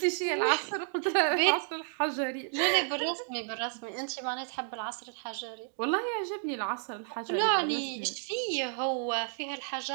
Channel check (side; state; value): left; silent; 57 dB below the other